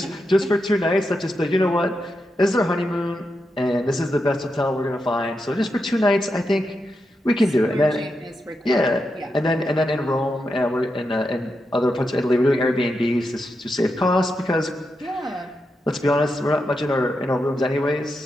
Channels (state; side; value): normal; both; correlation 0.86